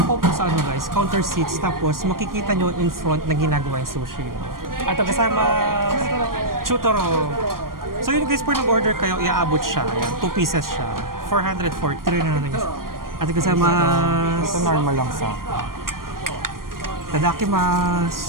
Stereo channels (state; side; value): late; left; 0.91 ms